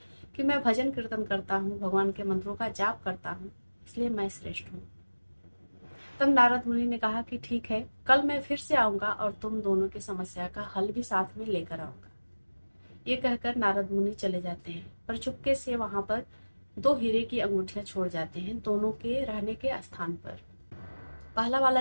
कि मैं भजन कीर्तन करता हूँ, भगवान के मंत्रों का जाप करता हूँ, इसलिए मैं श्रेष्ठ हूँ। तब नारद मुनि ने कहा कि ठीक है, कल मैं फिर से आऊंगा और तुम दोनों की समस्या का हल भी साथ में लेकर आऊंगा। ये कहकर नारद मुनि चले जाते हैं, पर चुपके से वहां पर दो हीरे की अंगूठियां छोड़ जाते हैं दोनों के रहने के स्थान पर। पहला वाला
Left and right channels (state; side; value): inverted; both; correlation -1.00